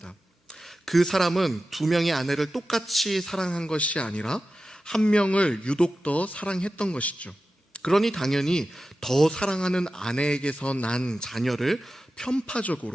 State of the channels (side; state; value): both; normal; correlation 0.93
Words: 그 사람은 두 명의 아내를 똑같이 사랑한 것이 아니라 한 명을 유독 더 사랑했던 것이죠. 그러니 당연히 더 사랑하는 아내에게서 난 자녀를